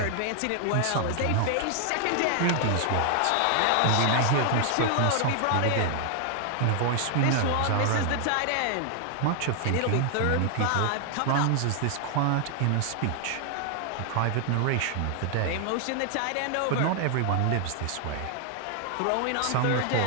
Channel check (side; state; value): both; different; correlation 0.00